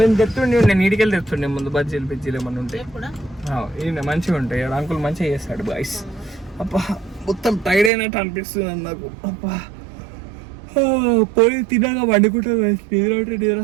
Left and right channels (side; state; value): left; drops out; at 7.9 s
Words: తెస్తుండే, నేను ఇంటికి వెళ్ళి తెస్తుండే ముందు బజ్జీలు బిజ్జీలు ఏమన్నా ఉంటాయి. ఈయన మంచిగా ఉంటాయి. అంకుల్ మంచిగా చేస్తాడు బాయ్స్. అబ్బా మొత్తం టైర్డ్ అయినట్టు అనిపిస్తుంది నాకు. అబ్బా పోయి తినగా వండుకుంటా గైస్. నిద్ర ఉంటే నిద్ర